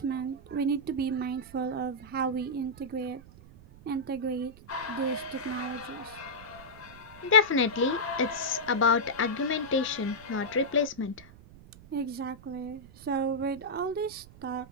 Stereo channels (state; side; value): noise; right; rumble, 20 dB below the sound